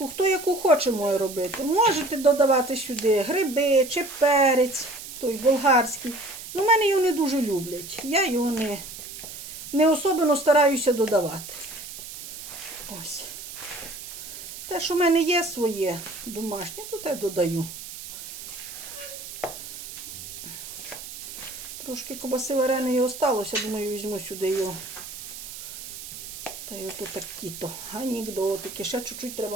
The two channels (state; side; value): noise; right; hiss, 11 dB below the sound